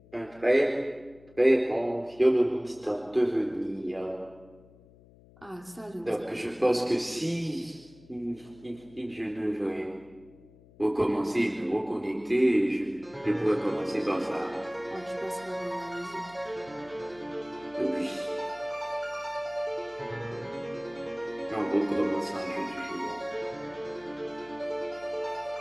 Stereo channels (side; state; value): left; noise; hum, 24 dB below the sound